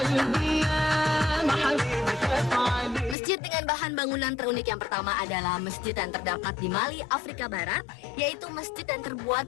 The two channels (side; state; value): right; drops out; at 3.2 s